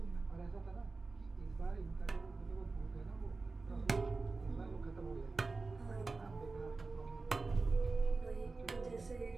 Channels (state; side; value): quieter; left; 3.8 dB